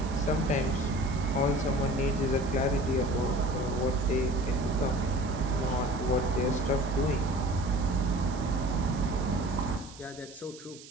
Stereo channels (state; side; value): noise; right; hiss, 18 dB below the sound